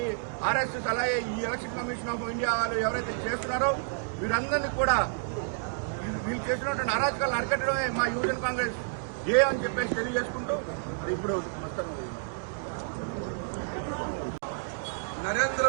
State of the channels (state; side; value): silent; left; digital silence